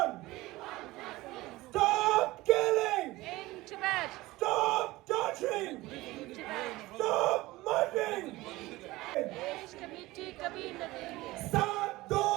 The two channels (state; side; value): quieter; left; 19.2 dB